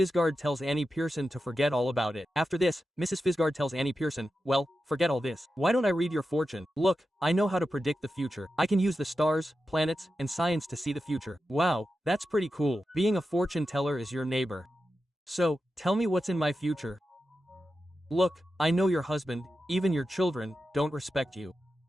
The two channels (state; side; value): normal; both; correlation 0.91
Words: tells Annie Pearson to forget all about it. After this, Mrs. Fisgard tells Annie Pearson, well, forget all this. Why don't I read your fortune? Look, I know how to predict the future. I can use the stars, planets, and science to see the future. Wow, that's pretty cool. Being a fortune teller is your neighbor. So, tell me what's in my future. Look, I know your husband, even your children, don't respect you.